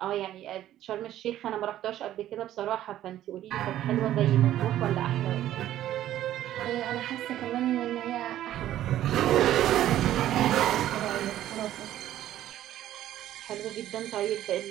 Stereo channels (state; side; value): quieter; left; 12.7 dB